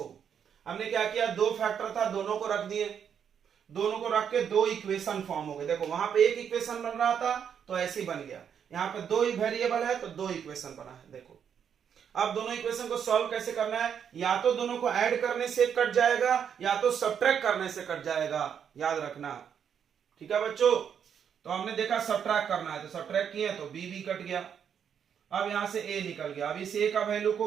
हमने क्या किया, दो फैक्टर था, दोनों को रख दिए, दोनों को रख के दो इक्वेशन फॉर्म हो गए। देखो वहां पे एक इक्वेशन बन रहा था तो ऐसे ही बन गया, यहाँ पे दो वेरिएबल है तो दो इक्वेशन बना है। देखो अब दोनों इक्वेशन को सॉल्व कैसे करना है, या तो दोनों को ऐड करने से कट जाएगा या तो सब्ट्रैक्ट करने से कट जाएगा, याद रखना, ठीक है बच्चों। तो हमने देखा सब्ट्रैक्ट करना है तो सब्ट्रैक्ट किया तो b भी कट गया, अब यहां से a निकल गया। अब इस a का वैल्यू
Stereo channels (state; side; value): quieter; left; 8.0 dB